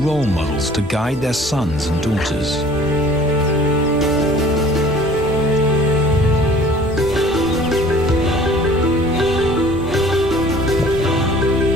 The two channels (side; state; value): both; normal; correlation 0.50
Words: models to guide their sons and daughters.